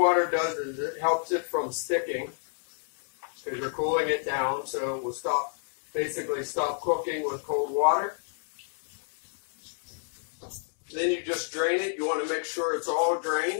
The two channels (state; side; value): silent; right; 58 dB below the other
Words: does is it helps it from sticking because you're cooling it down, so it will basically stop cooking with cold water. Then you just drain it. You want to make sure it's all